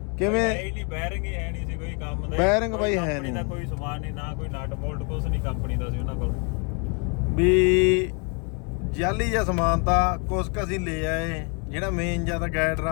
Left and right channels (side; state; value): right; quieter; 36.0 dB